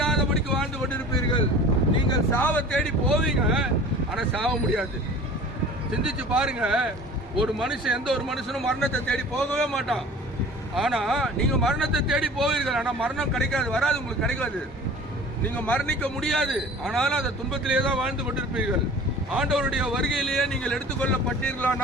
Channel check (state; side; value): normal; both; correlation 0.43